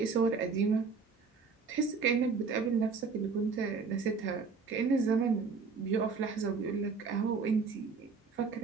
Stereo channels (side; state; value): left; quieter; 4.9 dB